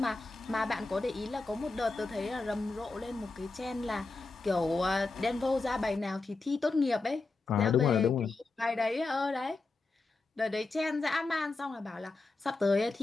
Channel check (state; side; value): quieter; right; 3.6 dB